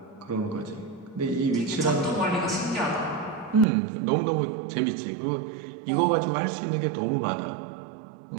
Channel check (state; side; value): drops out; left; at 3.7 s